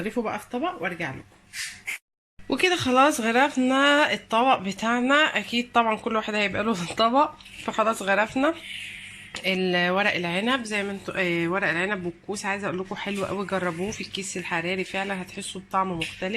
بقى في طبق وارجع لكم. وكده خلاص غرفنا الطبق بتاعنا. اكيد طبعا كل واحد هيبقى له طبق. فخلاص غرفنا الورق العنب زي ما انتوا ورق العنب والكوس. عايزه اقول لكم حلو قوي، جربوه في الكيس الحراري فعلا هتحسوا بطعم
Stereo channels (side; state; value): both; identical; correlation 1.00